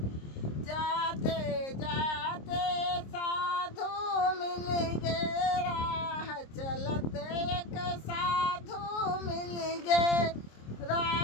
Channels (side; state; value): right; late; 26 ms